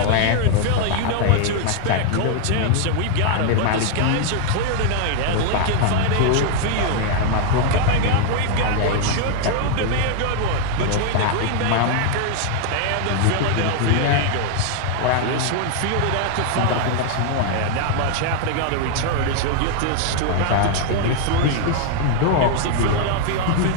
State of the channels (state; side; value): different; both; correlation 0.00